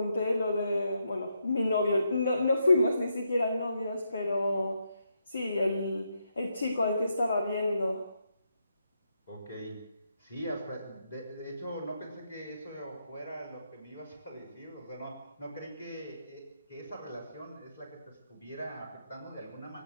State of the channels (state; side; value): inverted; both; correlation -0.80